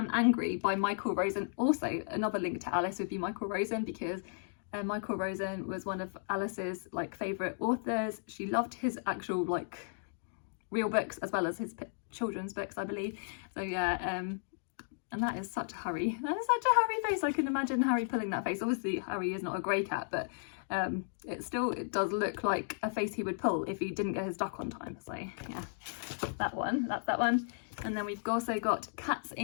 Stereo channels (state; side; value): silent; right; digital silence